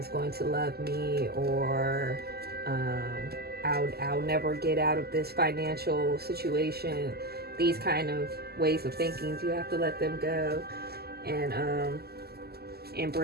going to love me, or I'll never get out of this financial situation. These kind of ways of thinking, you have to let them go and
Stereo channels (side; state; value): left; late; 0.46 ms